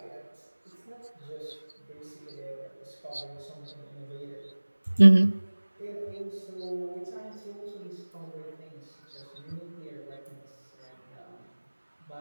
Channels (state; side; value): inverted; both; correlation -1.00